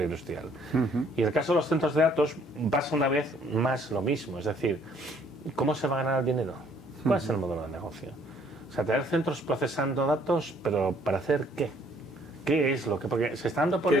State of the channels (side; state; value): both; normal; correlation 0.63